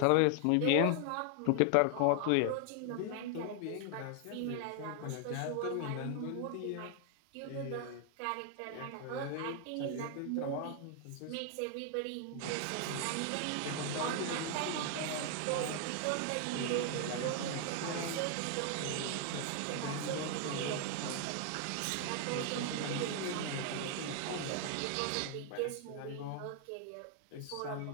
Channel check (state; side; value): different; both; correlation 0.00